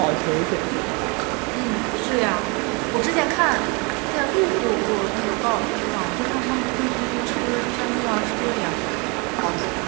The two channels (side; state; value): left; quieter; 30.3 dB